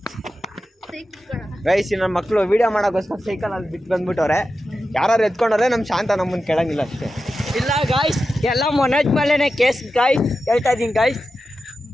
ಗೈಸ್ ನನ್ನ ಮಕ್ಕಳು ವಿಡಿಯೋ ಮಾಡೋಕ್ಕೋಸ್ಕರ ಸೈಕಲ್ ಅಲ್ಲಿ ಬಿಟ್ಟು ಬಂದ್ಬಿಟ್ಟವ್ರೆ. ಯಾರು ಎತ್ಕೊಂಡ್ರೆ ನಮ್ಮ ಶಾಂತ ನಮ್ಮನ್ನು ಕೇಳಂಗಿಲ್ಲ ಅಷ್ಟೇ. ಇಲ್ಲ ಗಾಯ್ಸ್, ಎಲ್ಲ ಮೊನಜ್ ಮೇಲೆನೆ ಕೇಸ್ ಗಾಯ್ಸ್. ಹೇಳ್ತಾ ಇದೀನಿ ಗಾಯ್ಸ್.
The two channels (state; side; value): normal; both; correlation 0.91